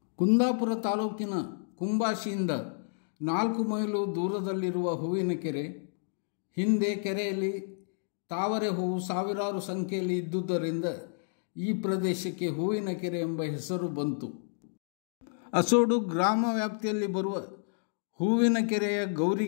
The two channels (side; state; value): right; silent; digital silence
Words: ಕುಂದಾಪುರ ತಾಲೂಕಿನ ಕುಂಬಾಶಿಯಿಂದ 4 ಮೈಲು ದೂರದಲ್ಲಿರುವ ಹೂವಿನಕೆರೆ. ಹಿಂದೆ ಕೆರೆಯಲ್ಲಿ ತಾವರೆ ಹೂವು ಸಾವಿರಾರು ಸಂಖ್ಯೆಯಲ್ಲಿ ಇದ್ದುದರಿಂದ ಈ ಪ್ರದೇಶಕ್ಕೆ ಹೂವಿನಕೆರೆ ಎಂಬ ಹೆಸರು ಬಂತು. ಅಸೋಡು ಗ್ರಾಮ ವ್ಯಾಪ್ತಿಯಲ್ಲಿ ಬರುವ ಹೂವಿನಕೆರೆಯ